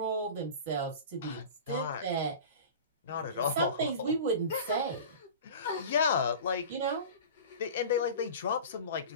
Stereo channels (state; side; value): inverted; both; correlation -0.35